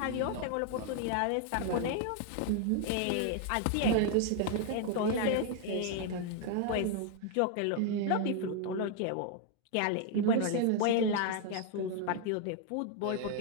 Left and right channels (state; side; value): different; both; correlation 0.00